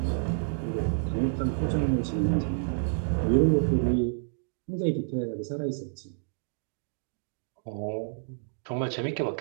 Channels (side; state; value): left; silent; digital silence